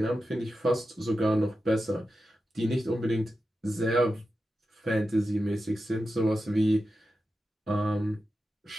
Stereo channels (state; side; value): normal; both; correlation 0.91